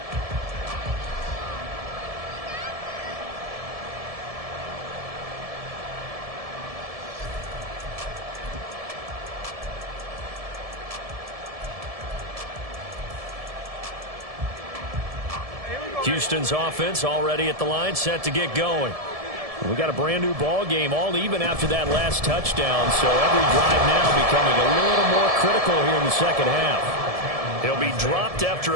Houston's offense already at the line, set to get going. We got a brand new ball game, all even after that last touchdown, so every drive now becoming a little more critical here in the second half. He'll be dropped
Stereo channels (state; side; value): late; left; 1.7 ms